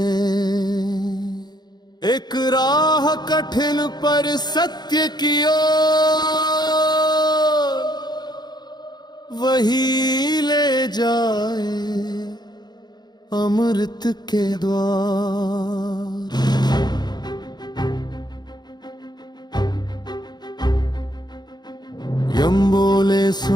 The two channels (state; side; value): late; right; 0.20 ms